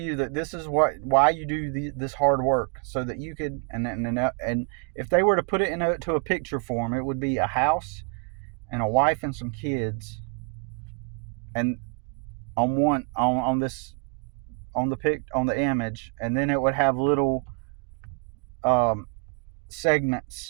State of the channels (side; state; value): left; quieter; 39.9 dB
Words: that this is why you do this hard work, so that you could, and if they were to put it into a picture form, it would be a house and a wife and some kids, and on the image, and then it would have little